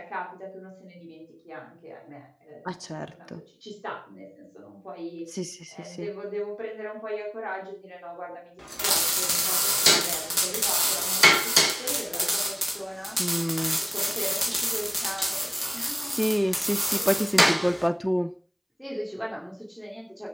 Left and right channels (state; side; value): identical; both; correlation 1.00